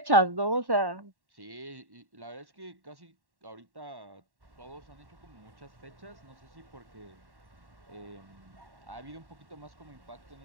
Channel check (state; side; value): late; left; 1.1 ms